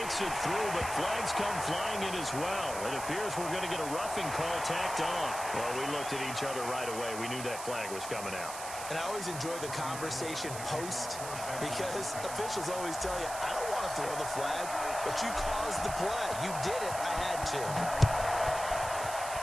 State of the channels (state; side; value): noise; right; hiss, 9 dB below the sound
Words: it through, but flags come flying in as well. It appears we're going to get a roughing call tacked on. Well, we looked at each other right away. We knew that flag was coming out. And I always enjoy the conversation post because officials always tell you, I don't want to throw the flag, but you caused the play. You did it. I had